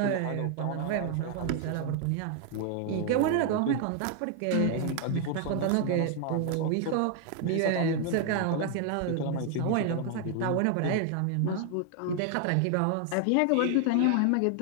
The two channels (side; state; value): both; different; correlation 0.00